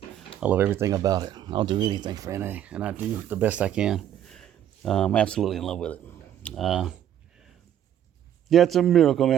I love everything about it. I'll do anything for NA, and I do the best I can. I'm absolutely in love with it. It's a miracle,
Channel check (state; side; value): quieter; left; 10.6 dB